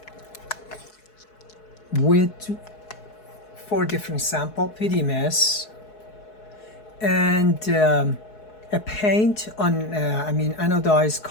with four different sample PDMS and a paint on anodized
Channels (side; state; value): right; late; 4.7 ms